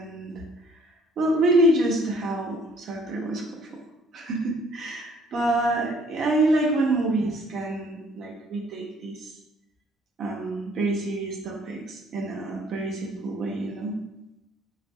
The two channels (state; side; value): normal; both; correlation 0.60